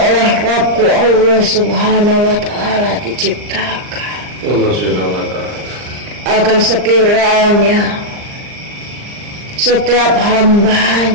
Rabbku Allah Subhanahu wa Ta'ala diciptakan Allah Subhanahu wa Ta'ala. agar sekiranya setiap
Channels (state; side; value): late; left; 39 ms